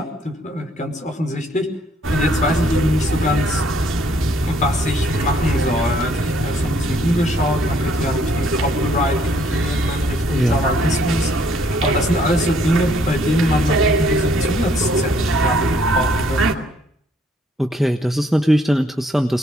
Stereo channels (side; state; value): both; normal; correlation 0.66